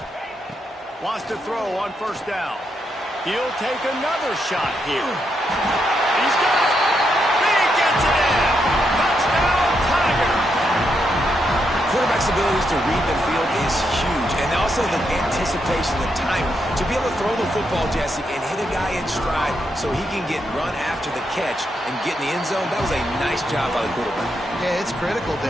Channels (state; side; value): normal; both; correlation 0.81